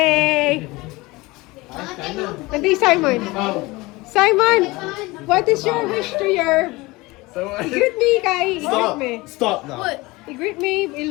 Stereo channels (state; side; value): quieter; right; 22.1 dB